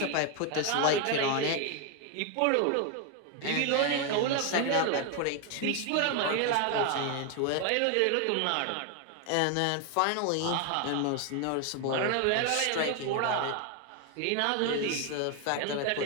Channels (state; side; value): different; both; correlation 0.01